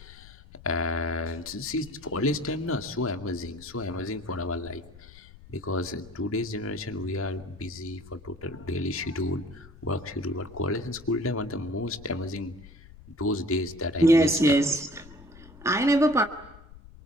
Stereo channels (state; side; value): noise; left; rumble, 19 dB below the sound